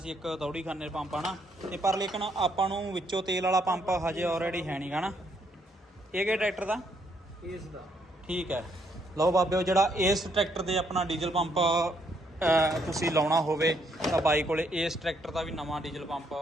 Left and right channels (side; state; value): both; normal; correlation 0.72